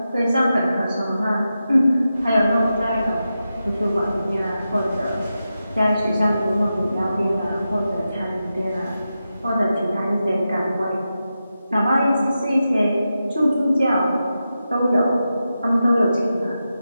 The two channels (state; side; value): inverted; both; correlation -0.90